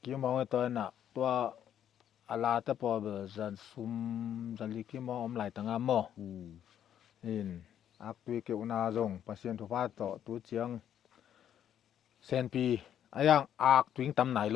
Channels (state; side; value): quieter; right; 9.9 dB